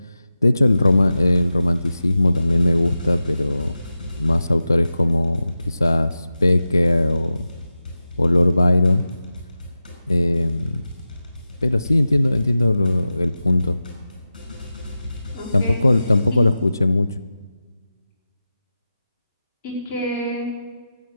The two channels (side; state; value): both; inverted; correlation -0.93